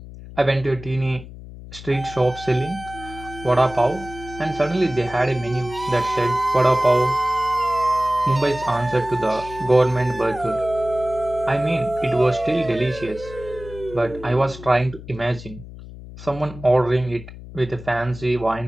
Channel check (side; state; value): left; noise; hum, 15 dB below the sound